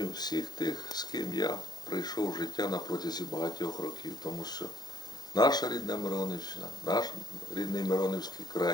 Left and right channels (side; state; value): right; late; 0.20 ms